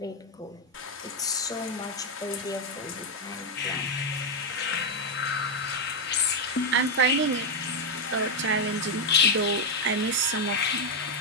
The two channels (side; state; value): both; normal; correlation 0.03